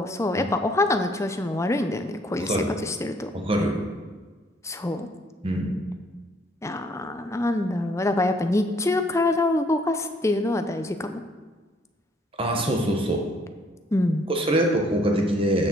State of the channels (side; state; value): both; normal; correlation 0.64